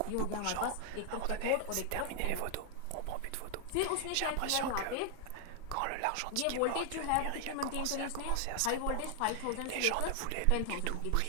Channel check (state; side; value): different; both; correlation 0.00